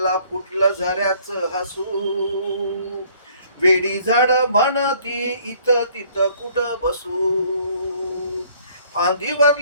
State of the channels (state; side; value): inverted; both; correlation -0.60